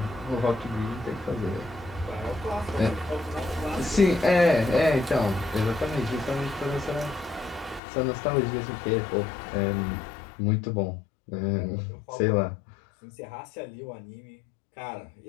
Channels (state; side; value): drops out; right; at 7.8 s